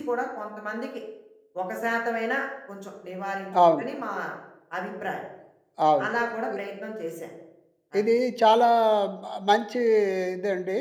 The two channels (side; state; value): both; identical; correlation 1.00